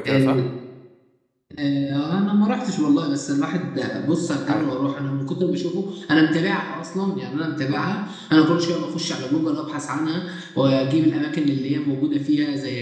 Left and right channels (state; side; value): identical; both; correlation 1.00